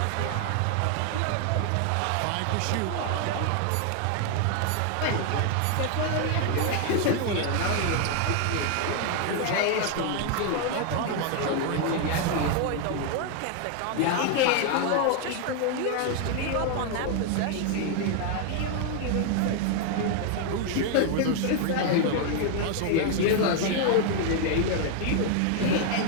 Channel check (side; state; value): both; different; correlation 0.00